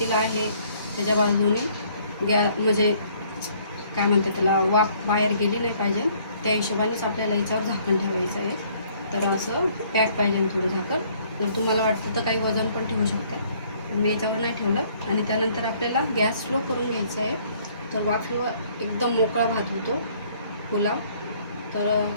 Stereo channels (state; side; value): inverted; both; correlation -0.61